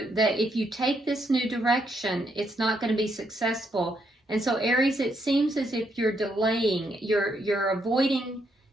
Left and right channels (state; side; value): normal; both; correlation 0.76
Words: that if you take this new direction, it's not going to be successful. And so Aries, it seems as if you're delaying, you're avoiding,